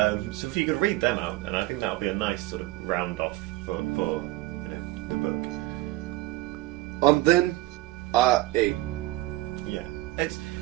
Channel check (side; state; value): left; quieter; 17.8 dB